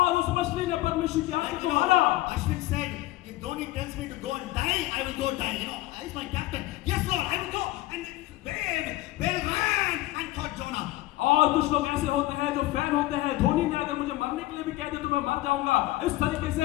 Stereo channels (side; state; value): right; quieter; 17.3 dB